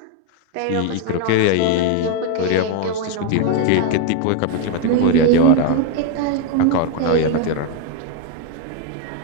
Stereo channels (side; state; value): both; different; correlation 0.01